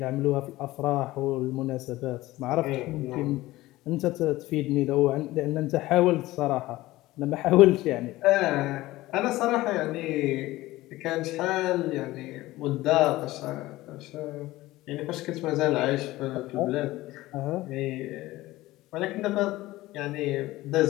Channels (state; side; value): quieter; right; 17.8 dB